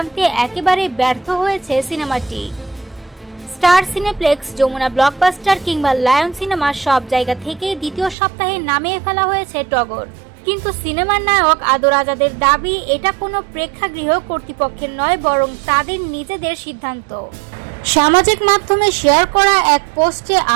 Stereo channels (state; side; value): drops out; left; at 8.2 s